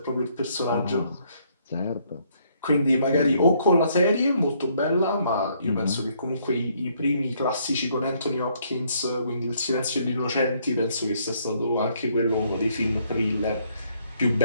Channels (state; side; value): inverted; both; correlation -0.69